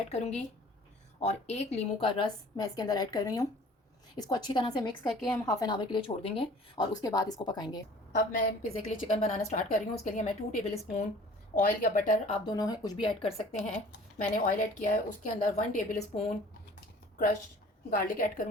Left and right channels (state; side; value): normal; both; correlation 0.49